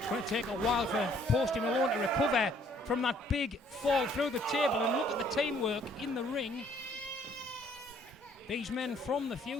going to take a while for Posty Malone to recover from that big fall through the table, and look at the teamwork in the ring. These men from the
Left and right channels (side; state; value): both; normal; correlation 0.62